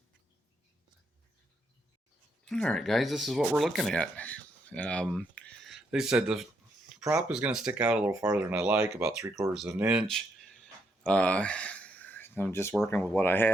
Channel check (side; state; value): both; normal; correlation 0.77